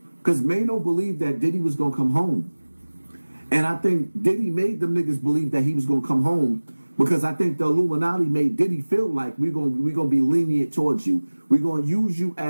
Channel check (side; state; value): both; inverted; correlation -1.00